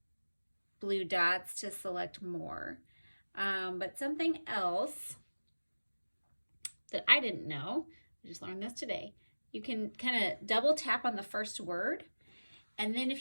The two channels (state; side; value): inverted; both; correlation -1.00